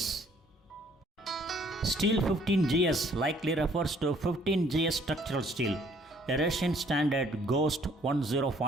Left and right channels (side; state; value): both; normal; correlation 0.61